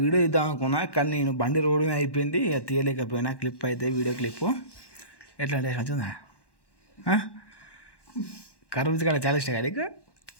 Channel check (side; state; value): right; late; 1.1 ms